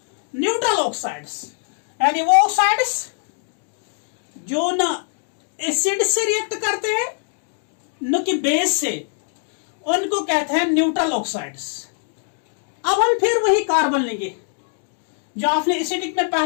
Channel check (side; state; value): right; silent; 64 dB below the other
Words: neutral oxides. यानी वो oxides जो न acid से रिएक्ट करते हैं न कि बेस से, उनको कहते हैं न्यूट्रल ऑक्साइड्स. अब हम फिर वही कार्बन लेंगे जो आपने एसिडिक में